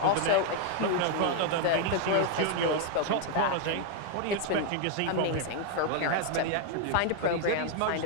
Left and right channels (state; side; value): different; both; correlation 0.01